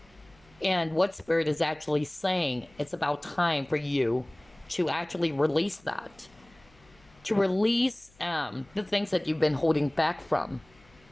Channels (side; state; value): left; noise; hum, 29 dB below the sound